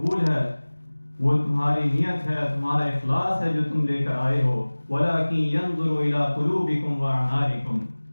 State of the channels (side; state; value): both; inverted; correlation -1.00